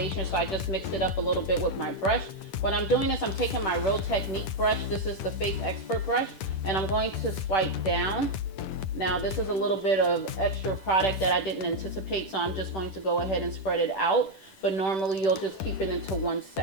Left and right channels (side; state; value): right; late; 10 ms